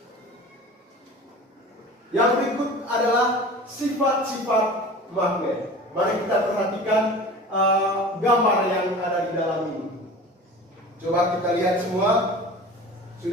Yang berikut adalah sifat-sifat magnet. Mari kita perhatikan gambar yang ada di dalam ini. Coba kita lihat semua.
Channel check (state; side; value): normal; both; correlation 0.38